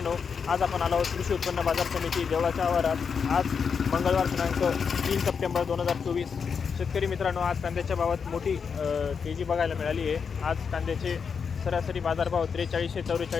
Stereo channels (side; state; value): right; quieter; 6.1 dB